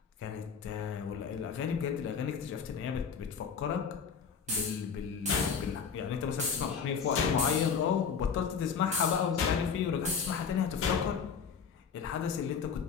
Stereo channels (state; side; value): quieter; right; 6.4 dB